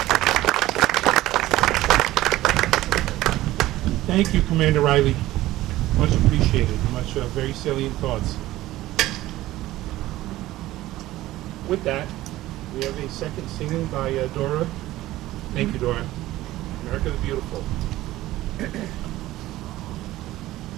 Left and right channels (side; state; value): left; quieter; 16.2 dB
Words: Thank you, Commander Riley. Much appreciated. Very salient thoughts. With that, we have a second singing by Dora. Thank you, Dora. America the Beautiful.